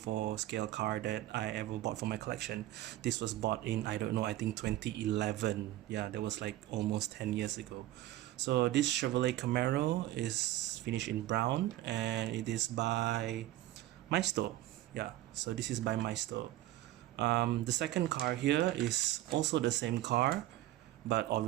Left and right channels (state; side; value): quieter; left; 15.1 dB